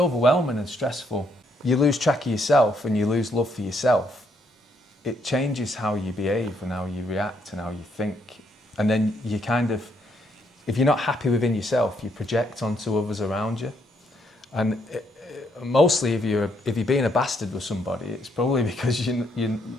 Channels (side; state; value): both; normal; correlation 0.73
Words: and stressful. You lose track of yourself and you lose love for yourself. It changes how you behave and how you react and how you think. And then you kind of, if you're not happy within yourself, you project onto others around you. And mostly if you're being a bastard with somebody, it's probably because you're